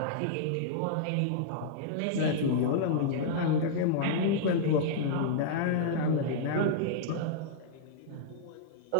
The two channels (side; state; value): both; different; correlation -0.02